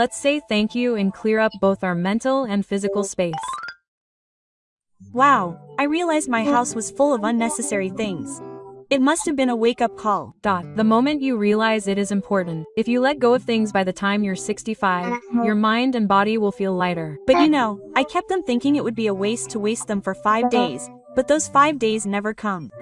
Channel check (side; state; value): both; identical; correlation 1.00